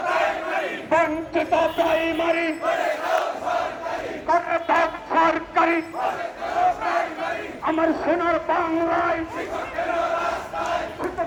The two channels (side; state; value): both; identical; correlation 1.00